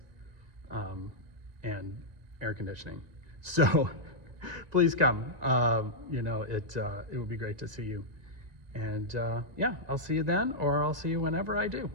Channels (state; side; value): late; left; 1.9 ms